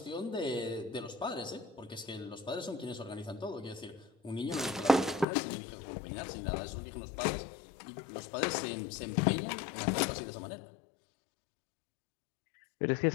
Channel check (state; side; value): drops out; right; at 5.2 s